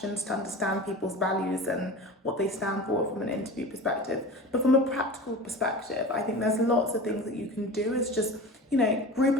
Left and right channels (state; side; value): normal; both; correlation 0.33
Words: to understand people's values and what they stand for from an interview perspective. But from a practical perspective, I think there's lots of things that you can do. It's just, you know, group